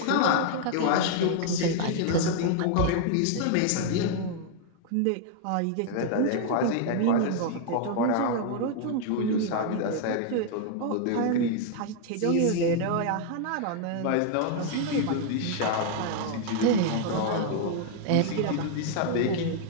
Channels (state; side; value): different; both; correlation 0.00